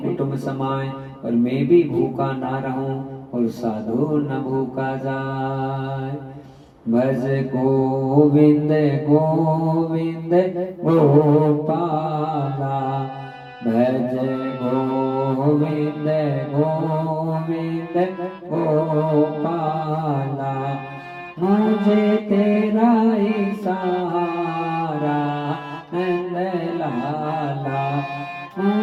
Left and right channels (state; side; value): identical; both; correlation 1.00